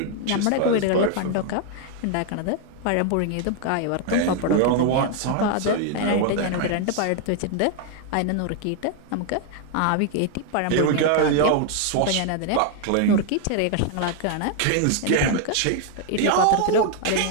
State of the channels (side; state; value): both; different; correlation 0.01